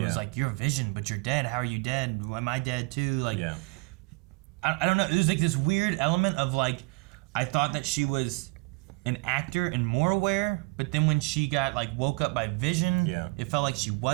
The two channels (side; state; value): left; quieter; 28.0 dB